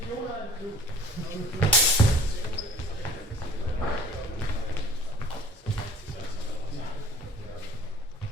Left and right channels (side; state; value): both; normal; correlation 0.49